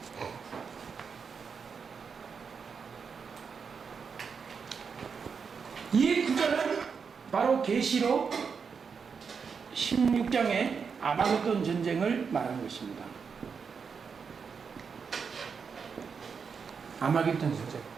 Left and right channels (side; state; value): left; quieter; 5.9 dB